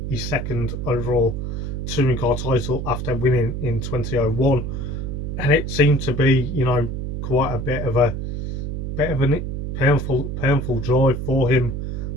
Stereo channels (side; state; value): right; noise; hum, 4 dB below the sound